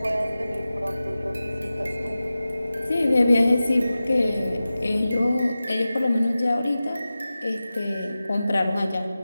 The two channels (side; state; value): both; inverted; correlation -0.95